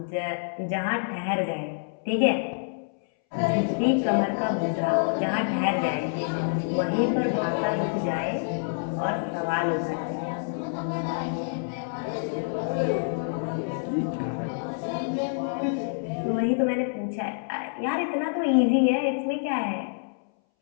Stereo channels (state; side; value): silent; right; 60 dB below the other